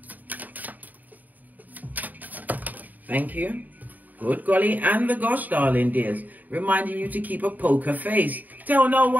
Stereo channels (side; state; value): left; late; 0.082 ms